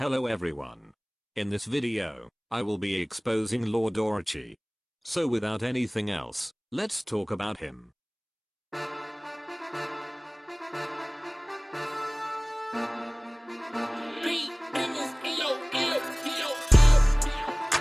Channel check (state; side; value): identical; both; correlation 1.00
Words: Hello everyone. In this video, I will be exposing Lord Orochi. So without anything else, let's talk about him.